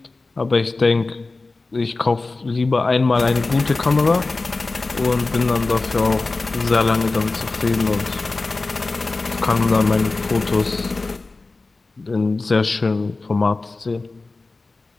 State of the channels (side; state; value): right; quieter; 3.5 dB